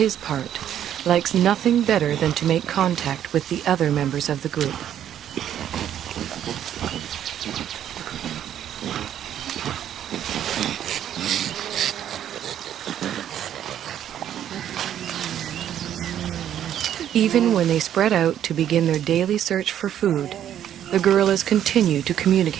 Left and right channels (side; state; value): left; quieter; 10.5 dB